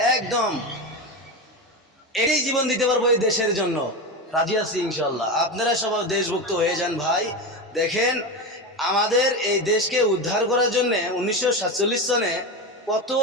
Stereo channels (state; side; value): normal; both; correlation 0.19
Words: একদম এই জীবন দিতে পারবো এই দেশের জন্য, রাজি আছি ইনশাআল্লাহ। আপনারা সবাই দেশভক্ত হয়ে যান ভাই। দেখেন আমাদের এই দেশকে উদ্ধার করার জন্য 1947 সনে কত